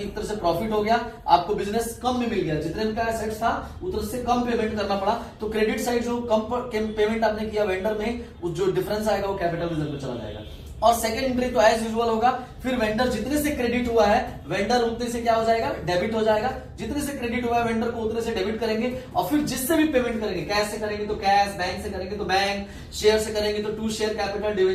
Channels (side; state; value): both; identical; correlation 1.00